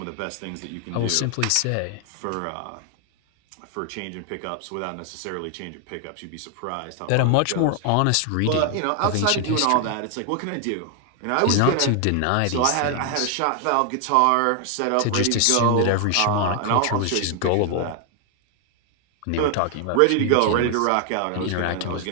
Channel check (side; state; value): both; different; correlation 0.00